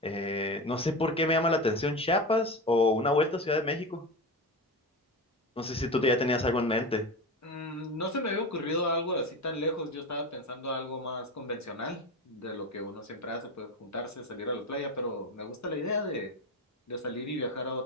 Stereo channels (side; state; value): both; normal; correlation 0.23